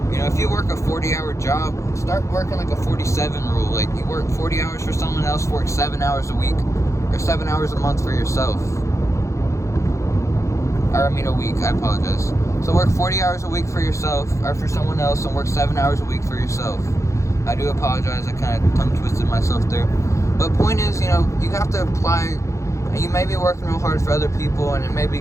You know, if you work a 40-hour job, start working like a 47 rule. Like, you work 40 hours for someone else, work 7 hours a week, or 7 hours a month for yourself. Or, I mean, a week, I apologize. So work 40 hours a week for yourself, or for someone else, and work 7 hours a week for yourself. I do apologize, I kind of tongue-twisted myself there. But point is, you know, you have to apply. You may be working real hard for other people, and it may be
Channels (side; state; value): right; late; 0.15 ms